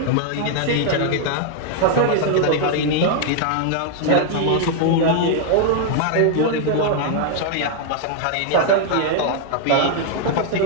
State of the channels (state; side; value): different; both; correlation 0.00